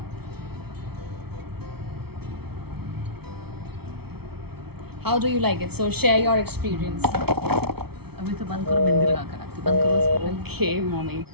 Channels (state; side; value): late; left; 0.96 ms